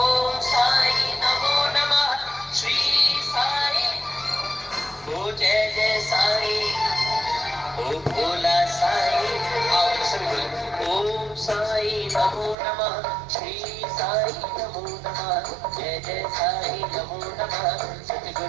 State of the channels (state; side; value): drops out; left; at 12.6 s